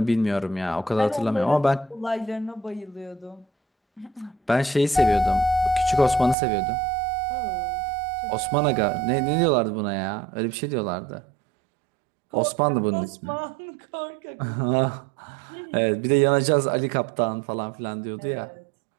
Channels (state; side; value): drops out; left; at 6.4 s